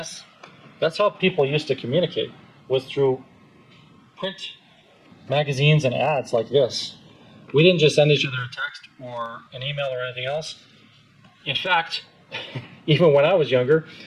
how people used to communicate, was through print magazines and ads like this. We didn't just send each other a text or an email or anything else. In fact, even when I was younger,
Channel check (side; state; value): both; identical; correlation 1.00